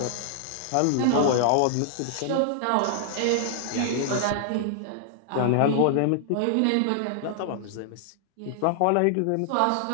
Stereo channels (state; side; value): different; both; correlation -0.01